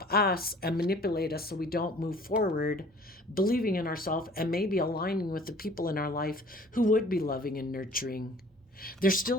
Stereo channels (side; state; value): both; normal; correlation 0.51